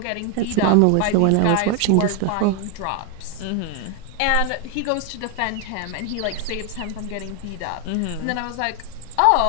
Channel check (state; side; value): different; both; correlation 0.01